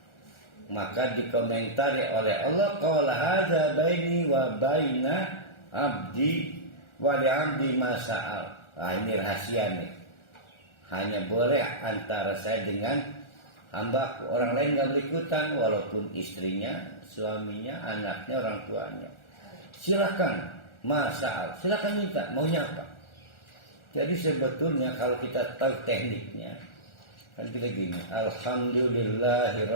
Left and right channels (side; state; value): right; late; 1.4 ms